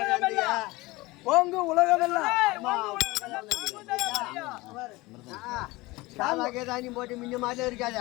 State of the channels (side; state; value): right; quieter; 21.4 dB